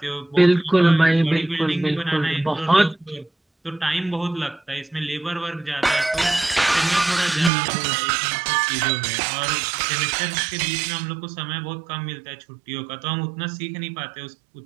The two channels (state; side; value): drops out; left; at 7.5 s